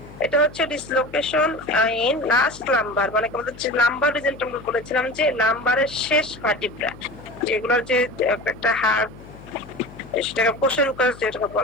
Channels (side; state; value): left; noise; hum, 18 dB below the sound